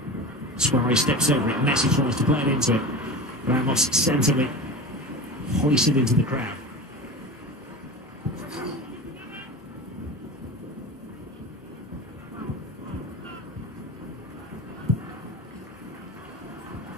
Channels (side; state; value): both; normal; correlation 0.30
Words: Suarez steps over it, Messi tries to play it into it. Ramos sensibly hoisted into the crowd.